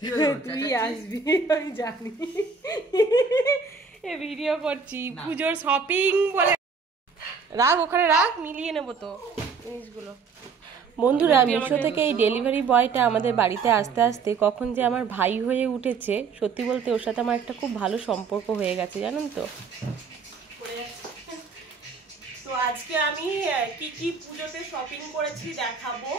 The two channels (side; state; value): left; quieter; 5.2 dB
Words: তুই আসবি, আমি জানি। এ ভিডিও করছি পুজোর শপিং বলে, রাখ ওখানে রাখ, মিলিয়ে নেবো তো জিনিসগুলো। বন্ধুরা, মিশো থেকে এই ডেলিভারি বয়টা আমাদের বাড়িতে আসতে আসতে কখন যে আমার ভাই হয়ে উঠেছে, সত্যি বলতে ওর সাথে আমার একটা খুব ভালো সম্পর্ক হয়ে গেছে, জানেন তো। তো আজকে আমি কি কি পুজোতে শপিং করেছি দেখাবো,